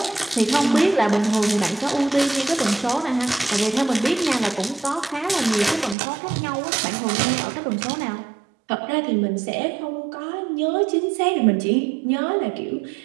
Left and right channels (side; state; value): left; drops out; at 6.0 s